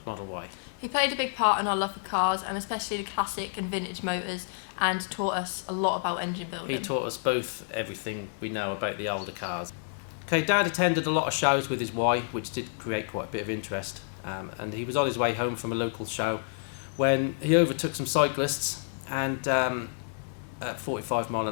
Model Y. He played a big part in our love for cars, and especially the classic and vintage motors, and taught us a lot about engine building. He taught us both everything we know about the older cars. Okay, Dad attended a lot of shows with his Y, which did create quite a bit of interest, and he was on his way home from a local show when he overtook some cyclists and at 45 mile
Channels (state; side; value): silent; right; 58 dB below the other